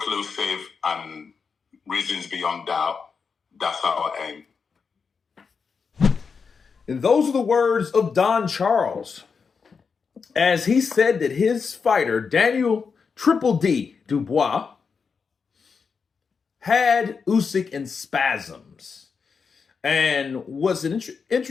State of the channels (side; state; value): right; quieter; 5.5 dB